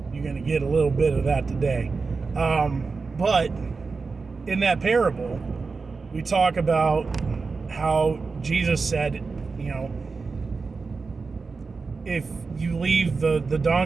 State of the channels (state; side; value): quieter; left; 4.4 dB